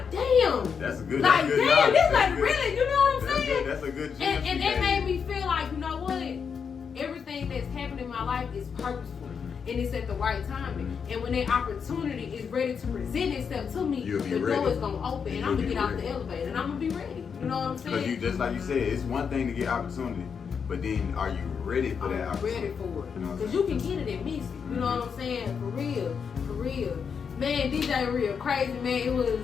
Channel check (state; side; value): quieter; right; 6.5 dB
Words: damn. That's a good. Like, that's good damn, knowledge. this That's like good. really, you know what I'm saying? That's a good. And it made me feel like, you know what? Everything that's happened in my life is purposeful. And it's at the right timing. And when that opportunity is ready to present itself to me, the door is gonna open and I'm gonna get out the elevator and I'm gonna be ready. You know what I'm saying? Because you just like you said, it's one thing to get opportunity, but then are you ready for that opportunity? Ready for it. You know what I'm Because saying? you can get it and miss it. You know what I'm saying? For real. For real. Man, DJ Real Krazy, man, it